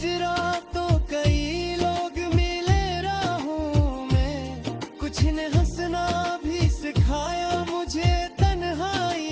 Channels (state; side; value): identical; both; correlation 1.00